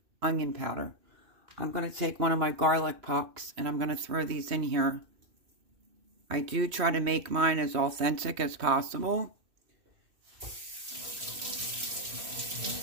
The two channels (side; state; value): left; late; 2.6 ms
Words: onion powder. I'm going to take one of my garlic pucks and I'm going to throw these in here. I do try to make mine as authentic as possible.